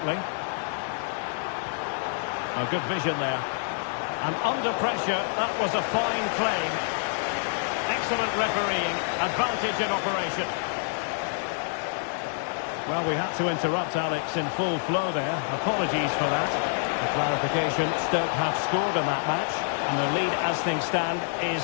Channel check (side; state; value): right; silent; 60 dB below the other